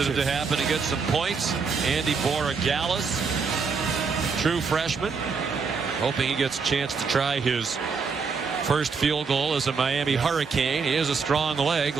to happen to get some points. Andy Borregales, true freshman, hoping he gets a chance to try his first field goal as a Miami Hurricane. He has a strong leg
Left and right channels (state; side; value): quieter; left; 5.2 dB